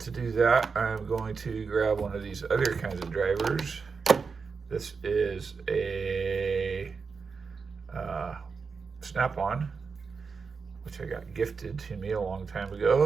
do that, I'm going to grab one of these other kinds of drivers. This is a snap-on, which I got gifted to me a long time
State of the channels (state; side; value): quieter; left; 5.1 dB